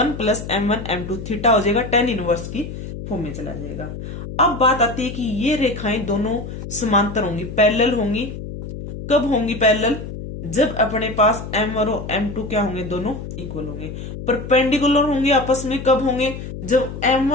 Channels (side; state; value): left; noise; hum, 9 dB below the sound